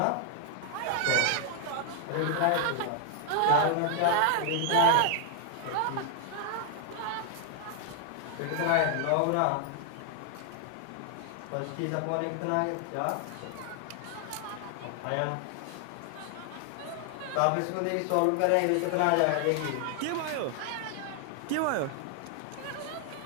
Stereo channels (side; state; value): both; different; correlation 0.00